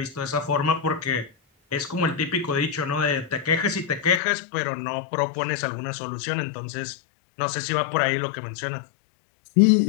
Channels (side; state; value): right; drops out; at 4.2 s